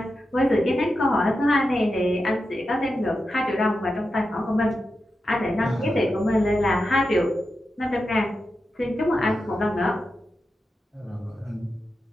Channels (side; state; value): both; normal; correlation 0.90